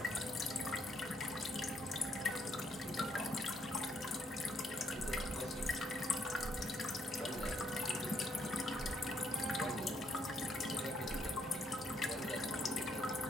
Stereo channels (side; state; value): both; normal; correlation 0.72